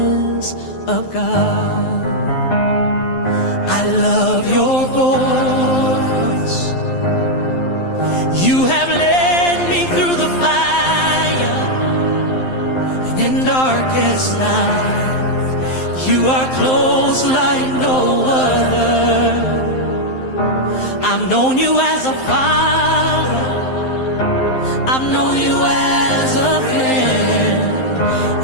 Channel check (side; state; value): right; late; 11 ms